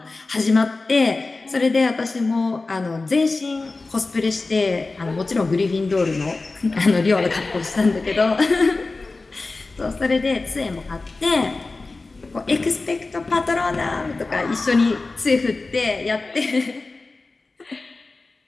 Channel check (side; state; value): right; quieter; 3.5 dB